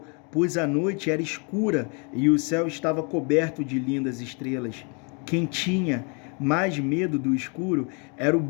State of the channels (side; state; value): right; quieter; 35.4 dB